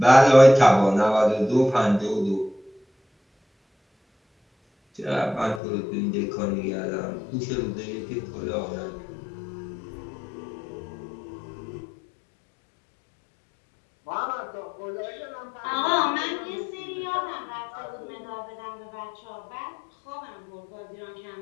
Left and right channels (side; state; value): right; drops out; at 5.6 s